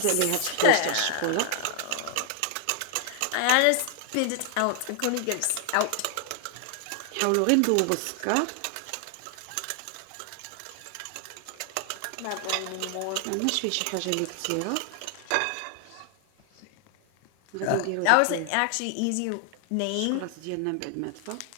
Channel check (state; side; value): different; both; correlation 0.00